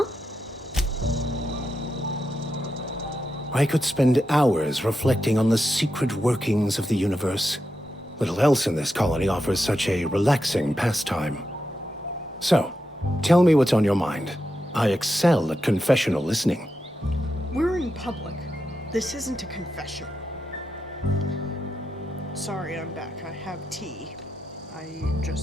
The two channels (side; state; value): both; normal; correlation 0.87